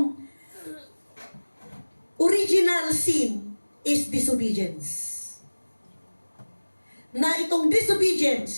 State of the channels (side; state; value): both; inverted; correlation -1.00